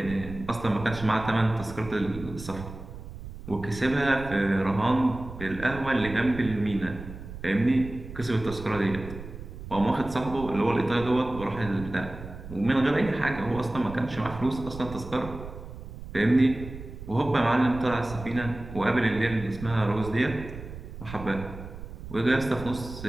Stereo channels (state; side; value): noise; right; rumble, 12 dB below the sound